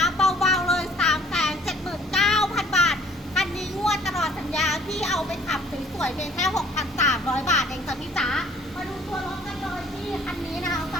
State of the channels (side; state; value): both; normal; correlation 0.57